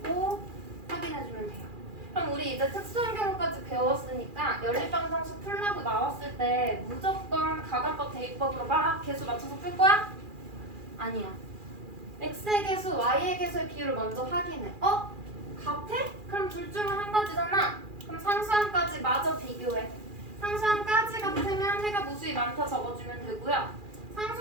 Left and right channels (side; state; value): left; late; 2.4 ms